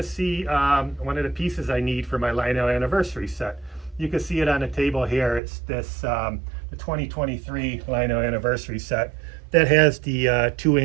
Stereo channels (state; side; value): drops out; left; at 5.4 s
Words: see one of the pieces I need for my Lionel anniversary set. You can see it on the table here. It's this the 2023 Lionel anniversary set that has the 2